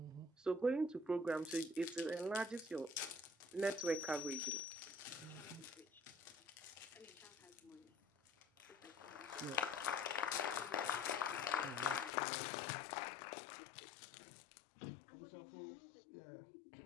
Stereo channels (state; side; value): drops out; right; at 12.1 s